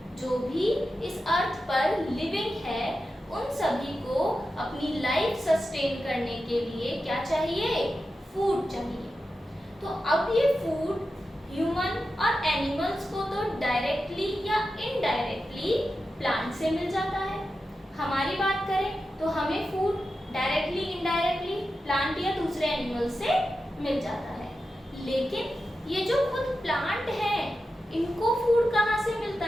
जो भी इस अर्थ पर लिविंग है, उन सभी को अपनी लाइफ सस्टेन करने के लिए क्या चाहिए, फूड चाहिए। तो अब ये फूड ह्यूमन और एनिमल्स को तो डायरेक्टली या इनडायरेक्टली प्लांट से मिल जाता है। हमारी बात करें तो हमें फूड डायरेक्टली इनडायरेक्टली प्लांट या दूसरे एनिमल से मिल जाता है। लेकिन ये जो खुद प्लांट है इनको फूड कहाँ से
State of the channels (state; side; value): normal; both; correlation 0.91